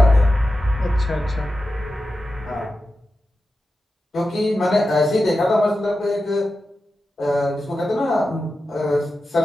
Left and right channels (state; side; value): normal; both; correlation 0.92